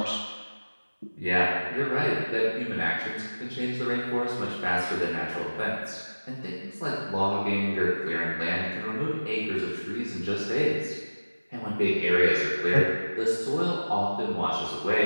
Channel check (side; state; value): both; inverted; correlation -1.00